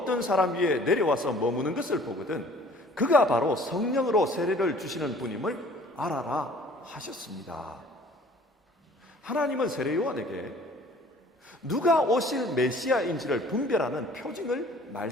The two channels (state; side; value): normal; both; correlation 0.52